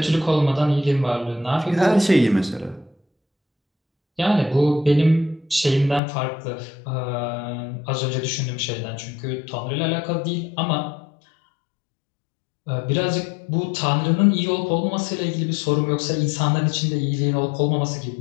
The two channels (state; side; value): drops out; right; at 6.0 s